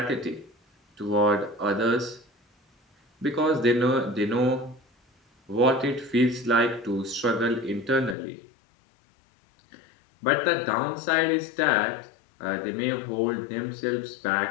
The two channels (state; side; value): drops out; right; at 8.2 s